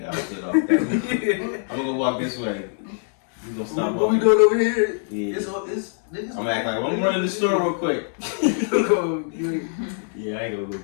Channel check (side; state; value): right; silent; digital silence